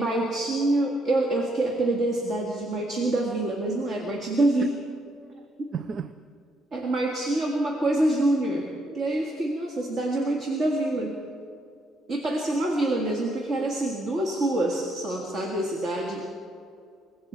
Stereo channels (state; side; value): normal; both; correlation 0.74